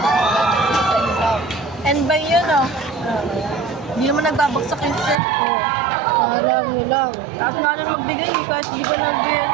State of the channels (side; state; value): left; drops out; at 5.2 s